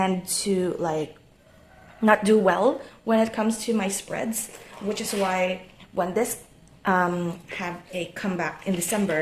to not do well when it comes to my spreads, which is why when this have a comeback in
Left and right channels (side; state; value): both; identical; correlation 1.00